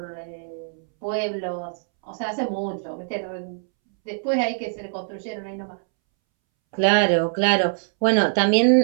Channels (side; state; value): left; silent; 63 dB below the other